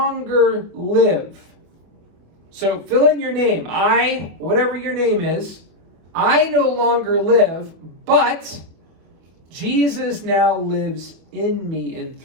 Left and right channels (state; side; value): late; left; 24 ms